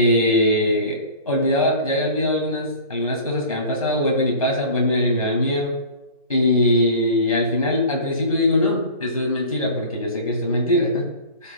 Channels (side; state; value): both; inverted; correlation -0.41